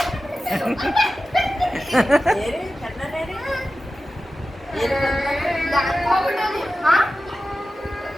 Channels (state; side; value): normal; both; correlation 0.94